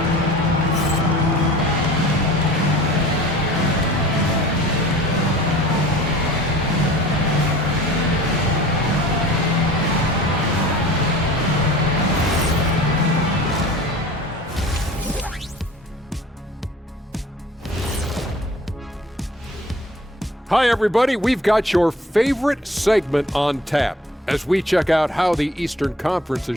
Hi, everybody. We've got your favorite segment on tap as we check out how the Eastern Conference is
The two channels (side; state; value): both; normal; correlation 0.46